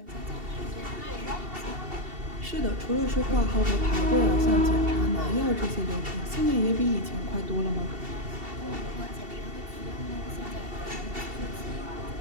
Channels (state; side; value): late; left; 2.7 ms